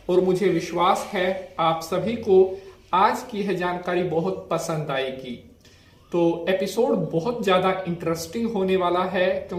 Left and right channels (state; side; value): identical; both; correlation 1.00